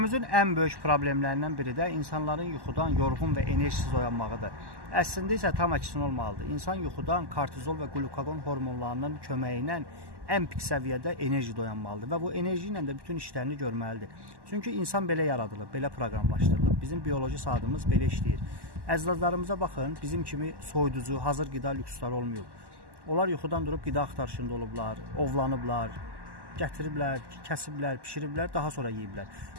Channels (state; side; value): late; left; 1.1 ms